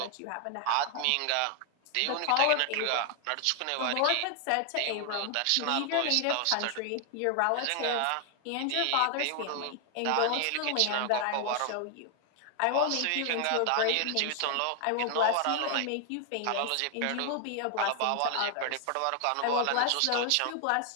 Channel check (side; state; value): both; different; correlation 0.00